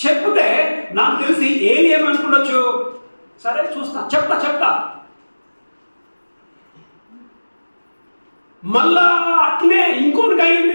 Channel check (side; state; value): both; inverted; correlation -1.00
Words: నాకు తెలిసి ఏలి ఏమనుకుండొచ్చు? సరే చూస్తా, చెప్తా. మళ్ళా అట్లే ఇంకోటికి